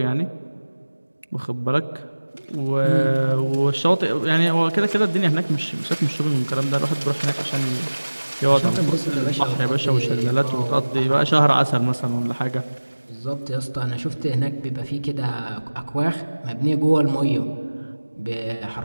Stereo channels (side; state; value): both; inverted; correlation -1.00